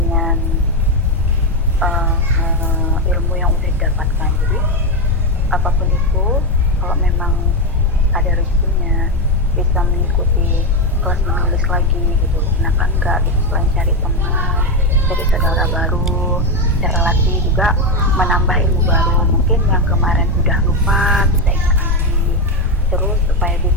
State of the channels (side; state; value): both; normal; correlation 0.09